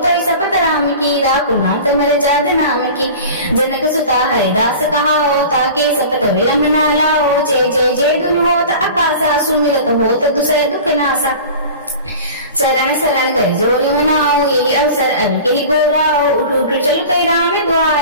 सपत राम की राकुनाथ मर जाद नाम की जनक सुता हरिदास कहाओ ताके सपत विलंब न लाओ जय जय जय दुनि होत आकाशा सुमिरत होत दुसर दुख नासा चरण शरण कर जोरी मनाओ यही अवसर अब के गोराओ उठ उठ चल कई राम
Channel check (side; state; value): both; inverted; correlation -0.38